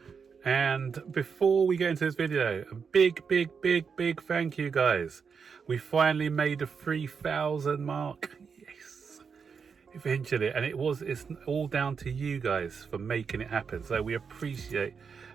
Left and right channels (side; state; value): left; quieter; 6.0 dB